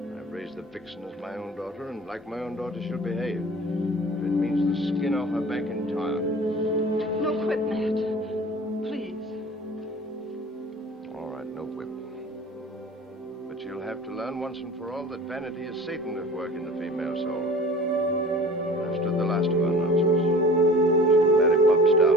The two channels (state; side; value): normal; both; correlation 0.43